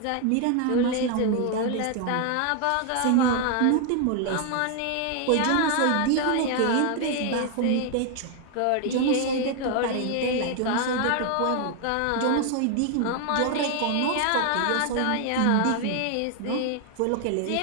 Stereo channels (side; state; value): both; different; correlation 0.00